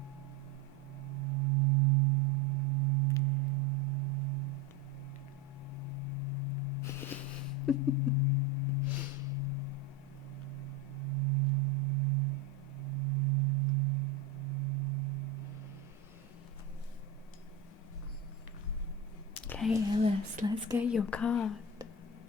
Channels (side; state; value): left; quieter; 3.3 dB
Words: Okay, Alice, let's get your card.